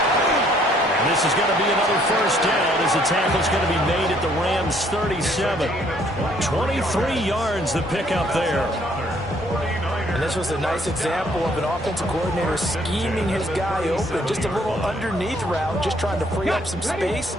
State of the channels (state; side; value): normal; both; correlation 0.64